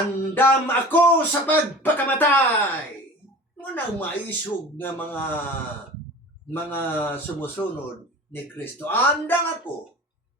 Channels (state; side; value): normal; both; correlation 0.39